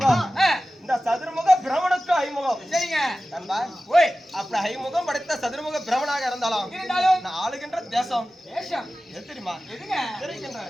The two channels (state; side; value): normal; both; correlation 0.96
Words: இந்த சதுர்முக பிரமனுக்கு 5 முகம். சரிங்க. நண்பா, ஓய், அப்படி 5 முகம் படைத்த சதுர்முக பிரமனாக இருந்தாலும் நான் ஆளுகின்ற தேசம் தேசம் எது தெரியுமா? எதுங்க?